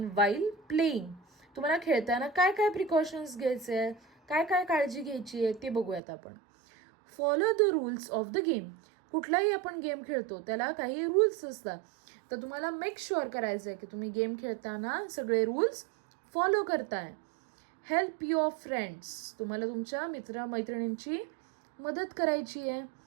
while playing. तुम्हाला खेळताना काय काय प्रिकॉशन्स घ्यायचे आहेत, काय काय काळजी घ्यायची आहे ते बघूयात आपण. Follow the rules of the game. कुठलाही आपण गेम खेळतो त्याला काही रूल्स असतात, तर तुम्हाला मेक शुअर करायचं आहे की तुम्ही गेम खेळताना सगळे रूल्स फॉलो करताय. Help your friends. तुम्हाला तुमच्या मित्रमैत्रिणींची मदत करायची आहे.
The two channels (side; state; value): left; drops out; at 6.0 s